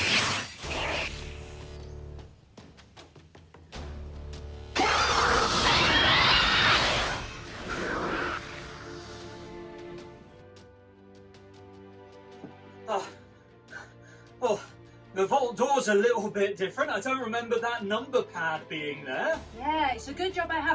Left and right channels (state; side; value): identical; both; correlation 1.00